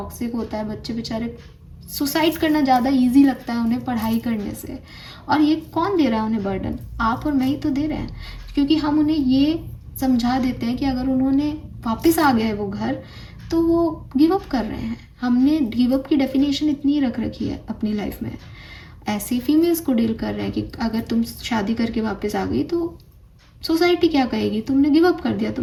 होता है, बच्चे बेचारे सुसाइड करना ज़्यादा ईजी लगता है उन्हें पढ़ाई करने से। और ये कौन दे रहा है उन्हें बर्डन? आप और मैं ही तो दे रहे हैं, क्योंकि हम उन्हें ये समझा देते हैं कि अगर उन्होंने वापस आ गए वो घर तो वो गिव अप कर रहे हैं। हमने गिव अप की डेफिनेशन इतनी रख रखी है अपनी लाइफ में। ऐसे फीमेल्स को डील कर रहे हैं कि अगर तुम शादी करके वापस आ गई तो सोसाइटी क्या कहेगी, तुमने गिव अप कर दिया,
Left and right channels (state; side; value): identical; both; correlation 1.00